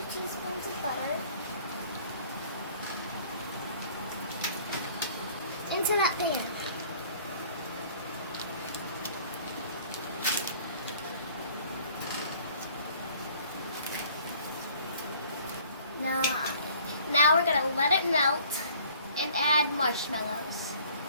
teaspoons of butter into that pan. Now we're going to let it melt and add marshmallows.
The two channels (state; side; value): inverted; both; correlation -0.54